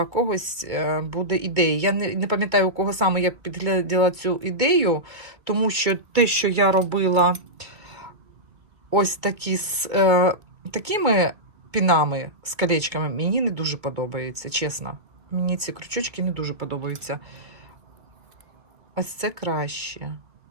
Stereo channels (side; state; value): left; late; 2.3 ms